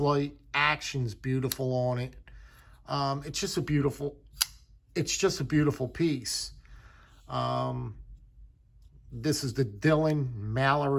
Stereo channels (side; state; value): both; identical; correlation 1.00